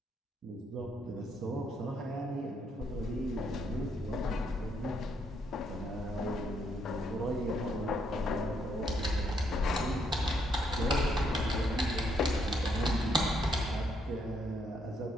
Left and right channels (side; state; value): both; normal; correlation 0.74